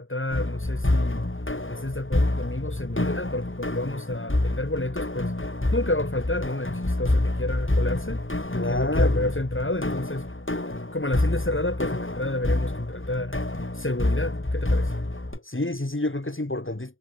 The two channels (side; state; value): right; late; 0.58 ms